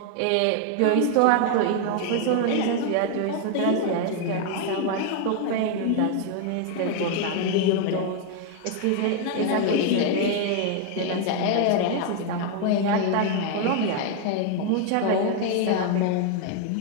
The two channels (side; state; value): both; different; correlation 0.00